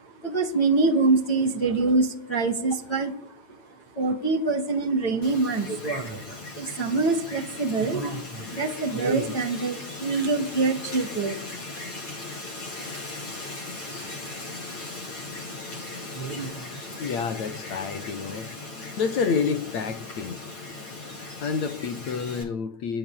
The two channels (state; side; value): late; right; 8.9 ms